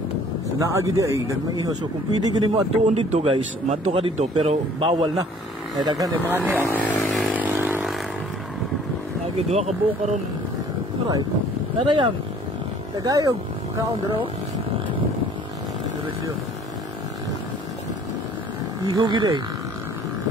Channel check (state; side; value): normal; both; correlation 0.54